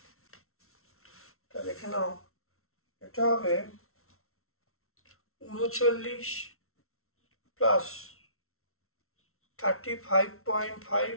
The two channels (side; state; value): right; late; 0.63 ms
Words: তা দেখে নাও, এটা হবে 39 প্লাস